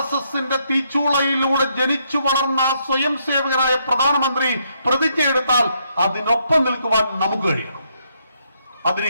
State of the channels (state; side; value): inverted; both; correlation -0.75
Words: തീച്ചൂളയിലൂടെ ജനിച്ചു വളർന്ന സ്വയം സേവകനായ പ്രധാനമന്ത്രി പ്രതിജ്ഞയെടുത്താൽ അതിനൊപ്പം നിൽക്കുവാൻ നമുക്ക് കഴിയണം. അതിന്